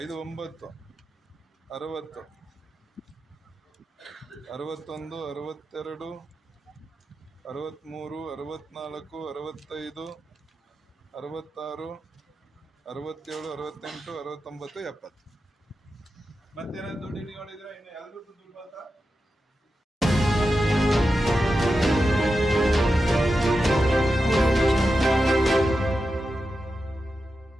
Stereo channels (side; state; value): both; normal; correlation 0.90